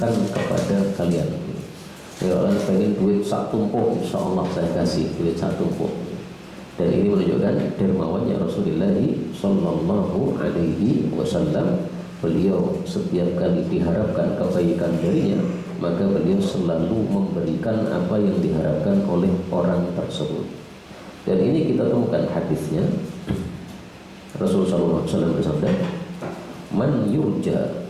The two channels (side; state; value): both; identical; correlation 1.00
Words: kepada kalian. Ya, orang pengen duit sak tumpuk, insya Allah saya kasih duit sak tumpuk. Dan ini menunjukkan dermawannya Rasulullah Sallallahu Alaihi Wasallam. Beliau setiap kali diharapkan kebaikan darinya, maka beliau selalu memberikan apa yang diharapkan oleh orang tersebut. Dan ini kita temukan hadisnya. Rasulullah SAW bersabda, man yurja.